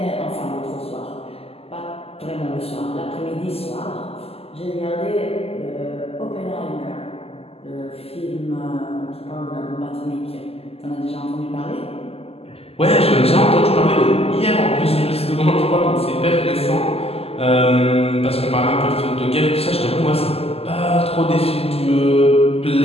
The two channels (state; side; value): late; right; 0.29 ms